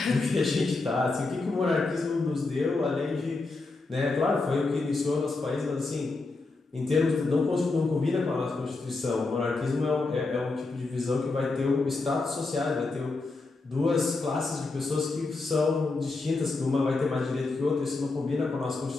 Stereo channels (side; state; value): right; quieter; 3.5 dB